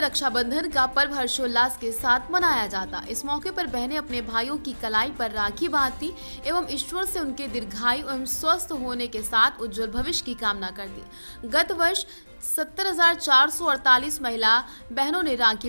रक्षाबंधन का पर्व हर्षोल्लास के साथ मनाया जाता। इस मौके पर बहनें अपने भाइयों की कलाई पर राखी बांधती एवं ईश्वर से उनके दीर्घायु एवं स्वस्थ होने के साथ उज्जवल भविष्य की कामना करती। गत वर्ष 70,448 महिला बहनों ने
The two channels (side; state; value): both; inverted; correlation -1.00